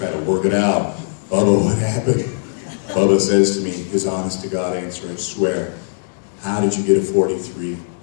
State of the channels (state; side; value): silent; right; digital silence